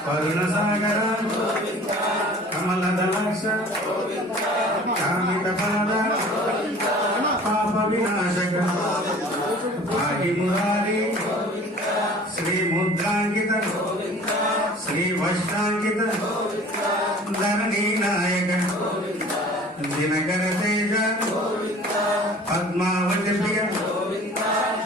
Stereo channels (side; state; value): both; normal; correlation 0.46